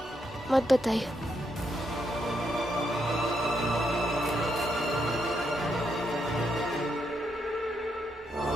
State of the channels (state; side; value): normal; both; correlation 0.79